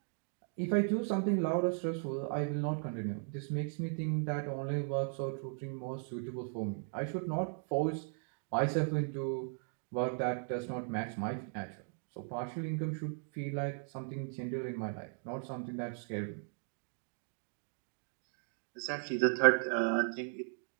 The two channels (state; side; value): silent; left; 53 dB below the other